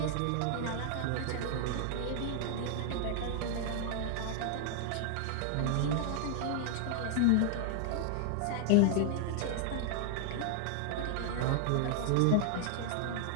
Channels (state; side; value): different; both; correlation 0.00